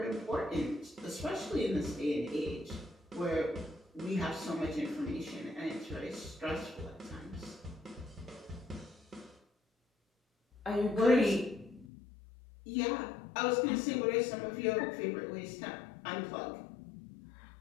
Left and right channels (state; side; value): drops out; right; at 11.9 s